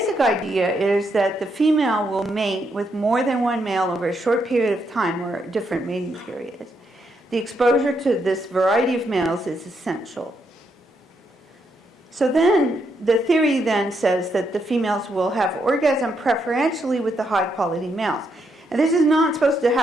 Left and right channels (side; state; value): both; normal; correlation 0.78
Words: idea is that the female will mate with more than one male over a short period of time or different mating periods. The exposure to this variety of males is essential. So then, the theory then says that the females will have orgasm preferentially with the high-quality males. And this is not supposed to